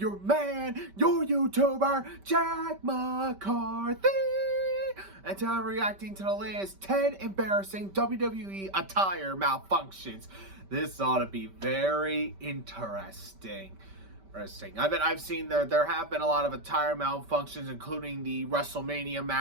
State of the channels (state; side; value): late; left; 5.2 ms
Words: man, your YouTuber, Jack McCarthy. And today I'm reacting to the latest 10 embarrassing WWE attire malfunctions. This ought to be very interesting. I've seen there have been a lot of attire malfunctions, including the WrestleMania